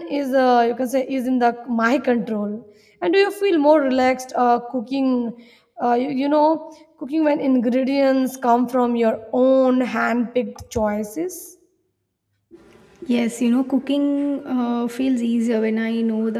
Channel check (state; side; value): identical; both; correlation 1.00